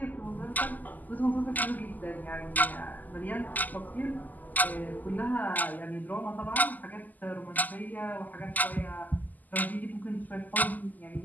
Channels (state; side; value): late; right; 0.082 ms